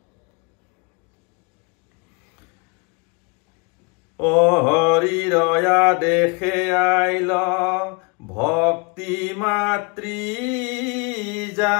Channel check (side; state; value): right; quieter; 30.8 dB